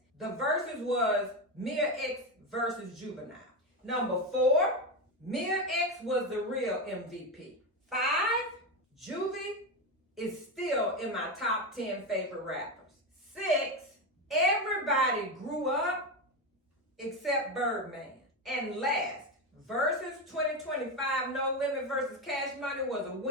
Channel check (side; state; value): both; normal; correlation 0.14